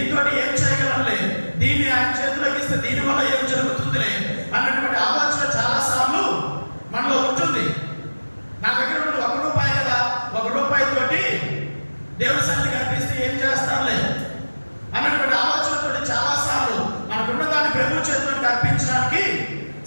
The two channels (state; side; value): inverted; both; correlation -1.00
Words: ఏం చేయగలనులే, దీన్ని ఆయన చేతులకు ఇస్తే దీనివల్ల ఏం జరుగుతుందిలే అన్నటువంటి ఆలోచన చాలా సార్లు మనలో ఉంటుంది. నా దగ్గర ఉన్నది 1 రూపాయి కదా, 1 రూపాయితోటి దేవుని సన్నిధికి అర్పిస్తే ఏం చేస్తానులే అన్నటువంటి ఆలోచనతో చాలా సార్లు మనకున్న దాన్ని ప్రభు చేతులకు అర్పించడానికి